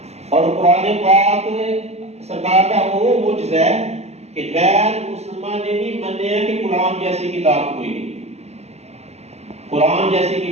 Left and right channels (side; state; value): left; late; 0.31 ms